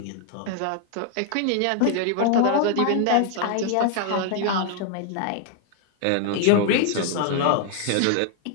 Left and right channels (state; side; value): different; both; correlation 0.00